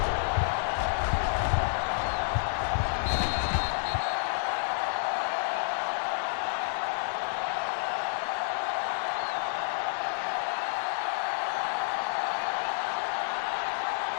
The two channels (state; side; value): silent; right; digital silence